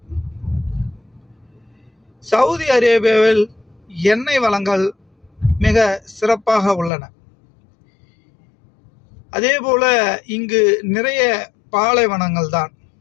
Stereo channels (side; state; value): right; drops out; at 6.9 s